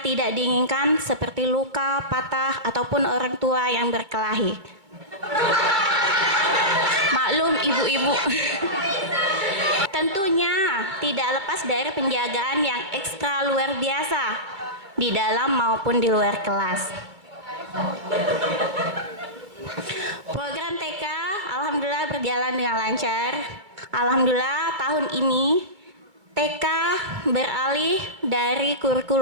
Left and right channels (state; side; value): late; left; 2.3 ms